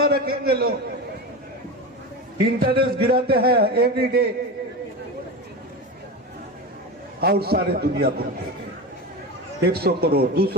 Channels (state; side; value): normal; both; correlation 0.24